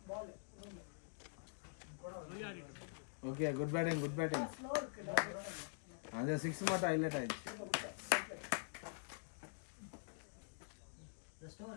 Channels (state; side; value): silent; right; digital silence